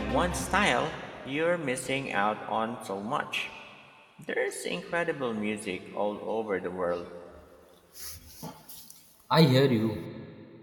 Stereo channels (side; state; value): both; identical; correlation 1.00